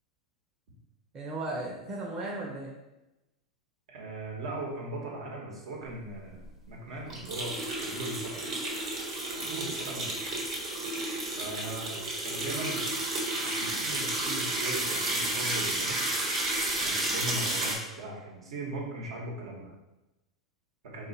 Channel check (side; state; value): both; normal; correlation 0.33